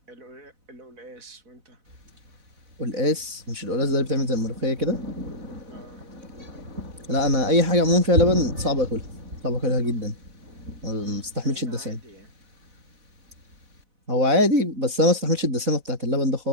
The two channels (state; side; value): late; left; 4.0 ms